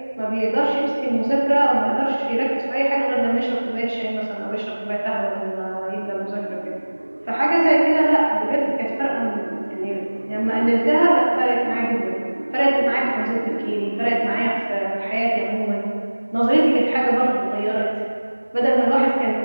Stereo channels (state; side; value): inverted; both; correlation -1.00